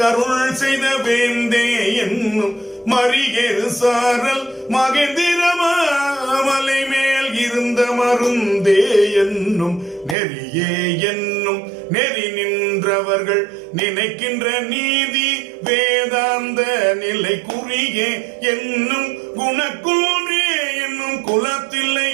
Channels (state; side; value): drops out; left; at 10.2 s